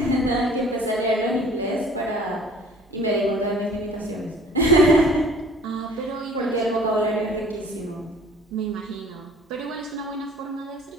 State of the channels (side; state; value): both; normal; correlation 0.50